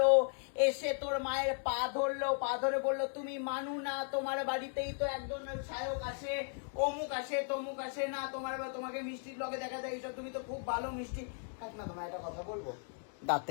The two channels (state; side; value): silent; right; 54 dB below the other